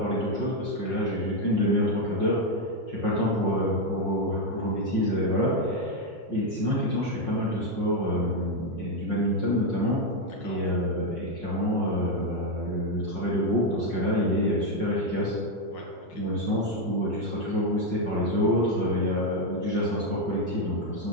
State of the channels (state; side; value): late; right; 5.5 ms